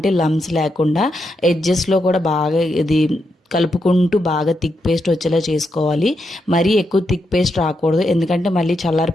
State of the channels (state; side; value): normal; both; correlation 0.83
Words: లమ్స్ లేకుండా ఎడ్జెస్లో కూడా బాగా ఇది కలుపుకుంటూ బాగా థిక్ పేస్ట్ వచ్చేలా చేసుకోవాలి. మరీ ఎక్కువ థిక్ పేస్ట్ రాకూడదు, ఎందుకంటే మళ్ళీ చల్లారి